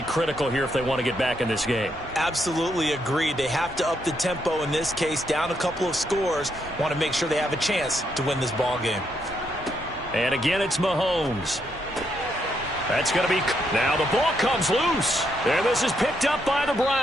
critical here if they want to get back in this game. Absolutely agreed. They have to up the tempo in this case, down a couple of scores. Want to make sure they have a chance to win this ball game. And again, it's Mahomes. That's going to be... Now the ball comes loose. And this is picked up by the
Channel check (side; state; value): both; normal; correlation 0.77